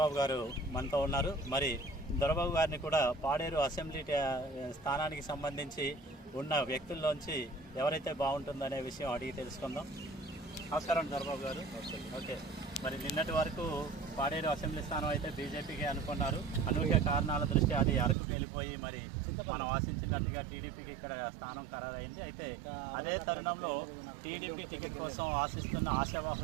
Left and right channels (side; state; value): left; drops out; at 18.2 s